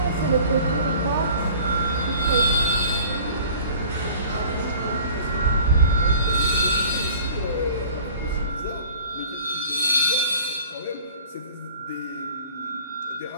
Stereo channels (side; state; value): both; inverted; correlation -0.46